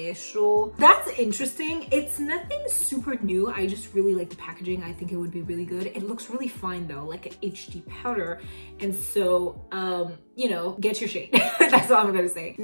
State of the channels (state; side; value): inverted; both; correlation -1.00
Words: That's interesting. It's nothing super new. I just really like the packaging. I think it would be really good. It looks really fine though, like an HD powder. And so, you know, get your shade. That's all I'm gonna say.